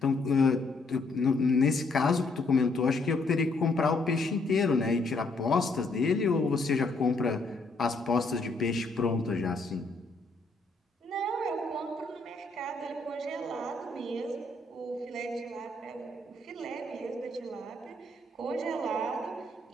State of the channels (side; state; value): right; quieter; 3.2 dB